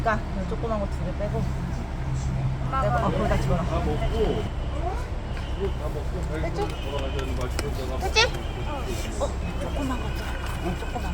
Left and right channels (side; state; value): both; identical; correlation 1.00